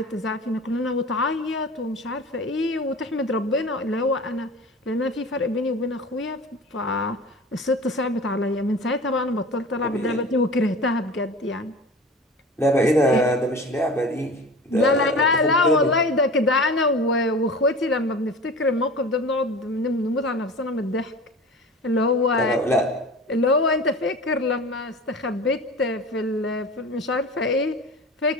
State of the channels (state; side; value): normal; both; correlation 0.36